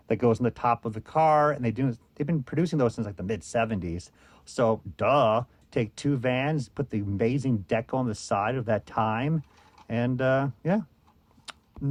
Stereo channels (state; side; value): identical; both; correlation 1.00